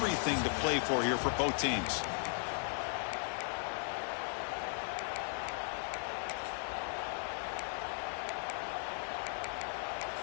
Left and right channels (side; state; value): right; silent; 53 dB below the other